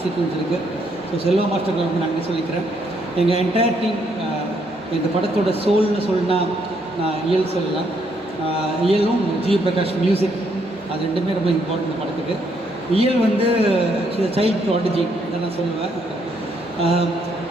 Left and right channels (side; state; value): both; normal; correlation 0.73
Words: சீக்வன்ஸ் இருக்குது. ஸோ செல்வா மாஸ்டருக்கு ரொம்ப நன்றி சொல்லிக்கிறேன். எங்கள் என்டையர் டீம். இந்த படத்தோட சோல்னு சொன்னால் நான் இயல் சொல்லலாம். இயலும் ஜி பிரகாஷ் மியூசிக், அது ரெண்டுமே ரொம்ப இம்பார்ட்டன்ட் இந்த படத்துக்கு. இயல் வந்து சைல்ட் ப்ராடஜி இதை நான் சொல்லுவேன்.